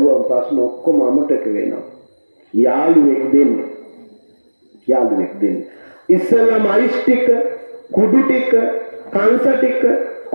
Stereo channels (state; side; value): inverted; both; correlation -1.00